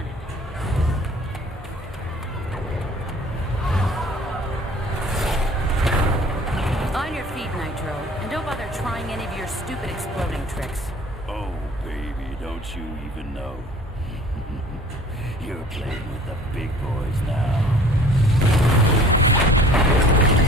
it. On your feet, Nitro. And don't bother trying any of your stupid exploding tricks. Oh, baby, don't you even know? You're playing with the big boys now.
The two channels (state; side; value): normal; both; correlation 0.50